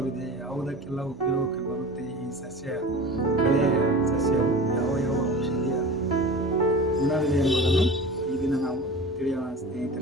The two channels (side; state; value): both; normal; correlation 0.35